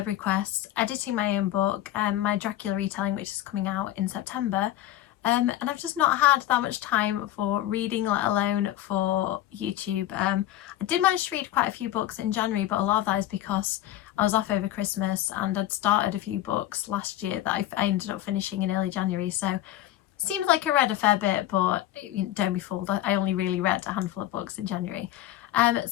requests, editing my own book, my Dracula retelling which is coming out in September, and I've just not had that much time for reading, let alone for YouTube. I did manage to read quite a few books in January, but a lot of that is because I was off over Christmas and I'd started a few books last year that I ended up finishing in early January, so seems like I read a fair bit, but don't be fooled, I only really read a handful of books in January.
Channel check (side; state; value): right; quieter; 13.8 dB